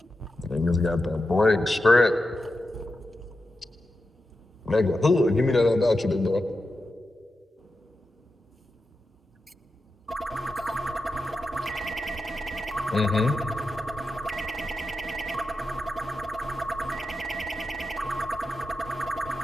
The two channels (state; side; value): normal; both; correlation 0.90